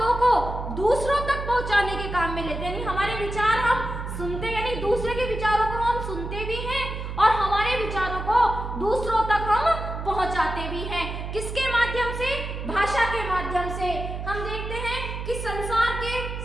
को दूसरों तक पहुंचाने के काम में लेते हैं। यानी हमारे विचार हम सुनते, यानी दूसरे के विचारों को हम सुनते भी हैं और हमारे विचारों को दूसरों तक हम पहुंचाते भी हैं। किसके माध्यम से? भाषा के माध्यम से। हम देखते हैं कि संसार के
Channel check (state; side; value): noise; right; hum, 6 dB below the sound